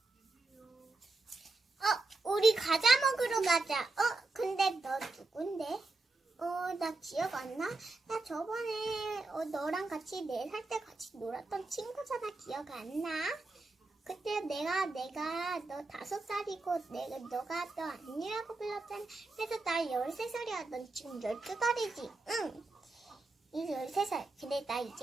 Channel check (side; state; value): left; quieter; 3.2 dB